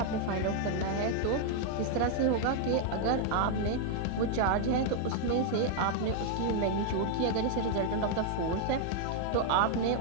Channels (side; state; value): both; different; correlation 0.00